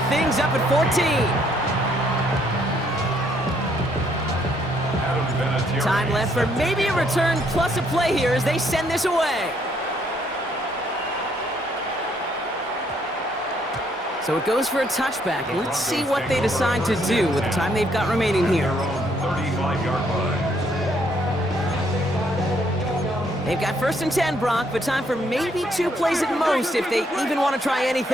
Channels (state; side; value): normal; both; correlation 0.70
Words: things up at 14. Time left for maybe a return plus a play here as they send this away. So it goes for a touchback. Let's see what they decide to do with the time they've got remaining here. 35-yard line. They've got 1st and 10, Brock, but time for maybe 2 plays at most if they even want to try